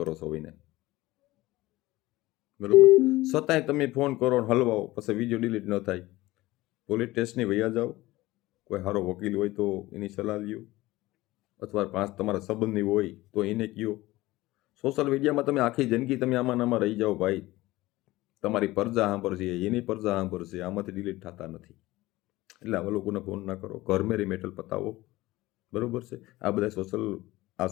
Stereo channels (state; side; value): quieter; right; 18.5 dB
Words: છો ભાઈને, બરોબર. છતાંય તમે ફોન કરો ને હલવાઓ, પછી વિડીયો ડિલીટ ન થાય. પોલીસ સ્ટેશને વયા જાઓ, કોઈ સારો વકીલ હોય તો એની સલાહ લ્યો, અથવા તમારા સંબંધી હોય તો એને કહો. સોશિયલ મીડિયામાં તમે આખી જિંદગી તમે આમાં રહી જાઓ ભાઈ. તમારી પરજા સાંભળશે, એની પરજા સાંભળશે, આમાંથી ડિલીટ થતા નથી. એટલે આવા લોકોને ફોન ના કરો, ઘર મેરી મેટલ પતાવો, બરોબર છે. આ બધા